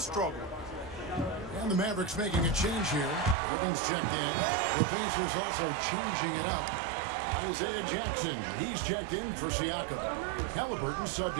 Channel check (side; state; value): left; drops out; at 3.4 s